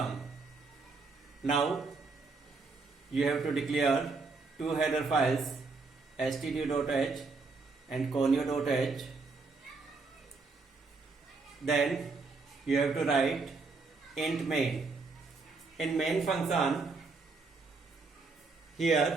Now, you have to declare two header files, stdio.h and conio.h. Then, you have to write int main. In main function,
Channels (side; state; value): left; quieter; 4.1 dB